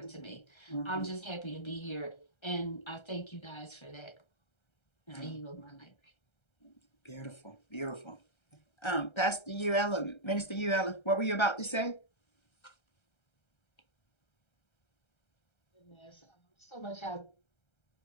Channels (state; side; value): late; right; 1.3 ms